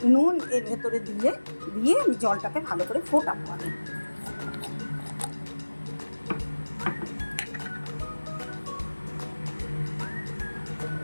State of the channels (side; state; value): both; inverted; correlation -1.00